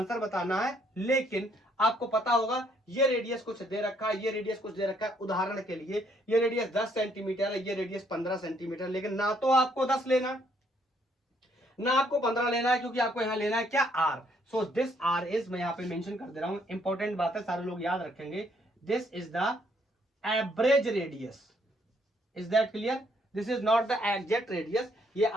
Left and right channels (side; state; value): both; normal; correlation 0.69